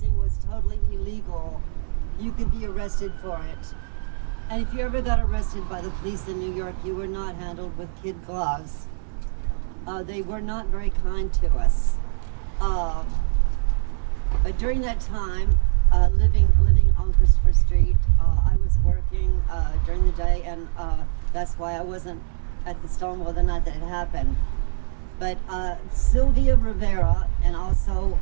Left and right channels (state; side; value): silent; left; 64 dB below the other